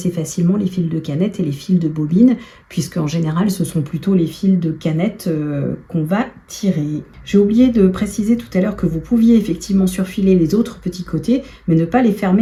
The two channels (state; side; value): identical; both; correlation 1.00